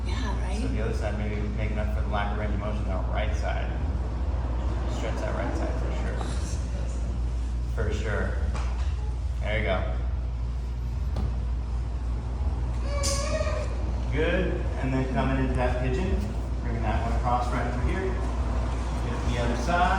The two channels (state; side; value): identical; both; correlation 1.00